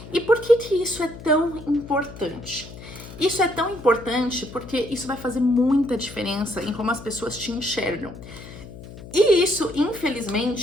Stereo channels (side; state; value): left; noise; hum, 15 dB below the sound